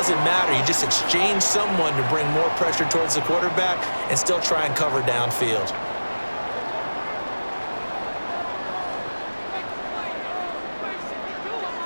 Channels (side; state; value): both; inverted; correlation -1.00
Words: matter. You just exchange someone to bring more pressure towards the quarterback and still try and cover downfield.